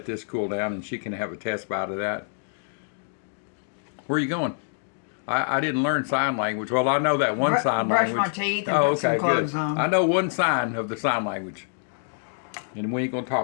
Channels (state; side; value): silent; right; digital silence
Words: this cool down, and she can have a test bite of that. Where are you going? I didn't learn sign language. Well, I know that one sign language. Brush my teeth and put some clothes on. I know one sign of the sign language. And we ain't going to